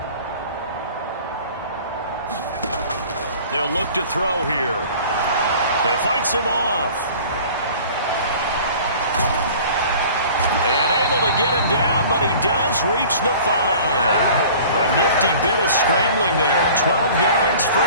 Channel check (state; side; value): inverted; both; correlation -0.45